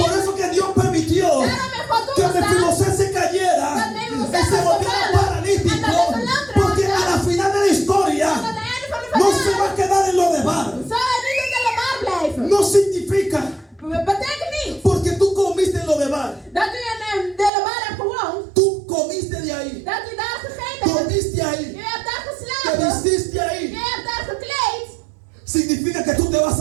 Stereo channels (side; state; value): left; drops out; at 17.5 s